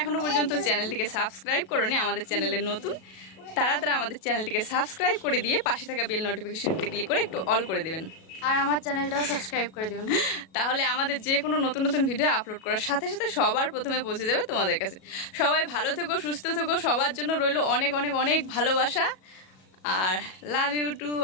এখনো পর্যন্ত চ্যানেলটিকে সাবস্ক্রাইব করোনি, আমাদের চ্যানেলের নতুন, তারা তারা আমাদের চ্যানেলটিকে সাবস্ক্রাইব করে দিয়ে পাশে থাকা বেল নোটিফিকেশনটি ক্লিক করে একটু অল করে দেবেন। আর আমার চ্যানেলটাও সাবস্ক্রাইব করে দিবেন। তাহলে আমাদের যে কোনো নতুন নতুন ভিডিও আপলোড করার সাথে সাথে সবার প্রথমে পৌঁছে যাবে তোমাদের কাছে। সবাই ভালো থেকো, সুস্থ থেকো, সবার জন্য রইলো অনেক অনেক অনেক ভালোবাসা। আর love you to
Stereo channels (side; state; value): right; late; 37 ms